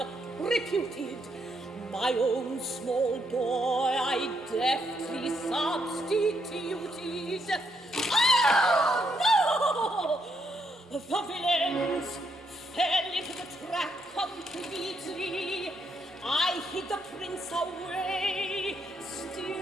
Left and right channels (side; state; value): both; normal; correlation 0.77